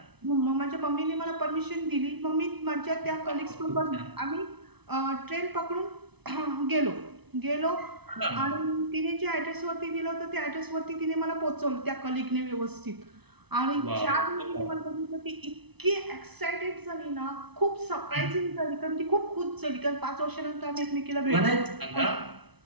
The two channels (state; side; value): late; left; 0.99 ms